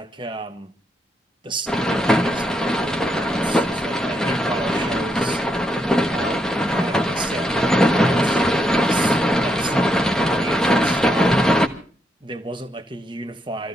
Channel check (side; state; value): both; normal; correlation 0.79